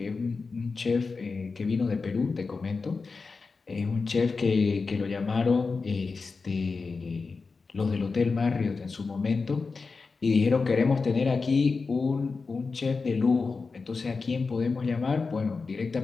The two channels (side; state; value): right; quieter; 4.4 dB